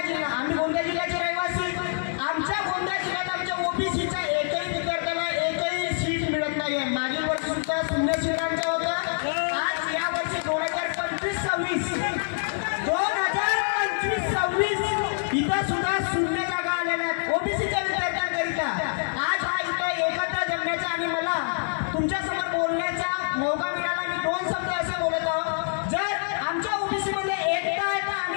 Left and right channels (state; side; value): silent; right; digital silence